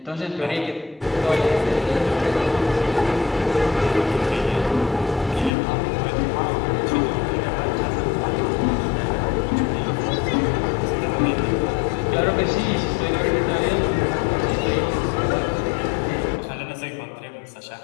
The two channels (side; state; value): right; drops out; at 5.5 s